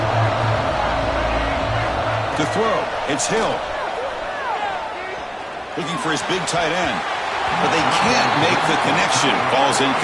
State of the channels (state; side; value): identical; both; correlation 1.00